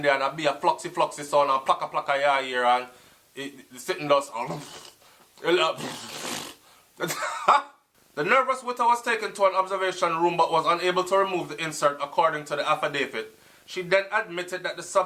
there and a be a floxy sound and plaka your ear and it sitting does. The nervous widow was taken to an observation room but was unable to remove the insert according to the affidavit. She then admitted that the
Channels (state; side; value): identical; both; correlation 1.00